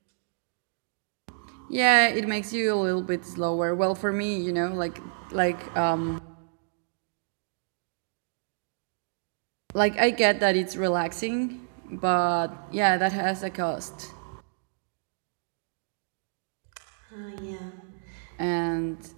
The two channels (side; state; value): left; silent; digital silence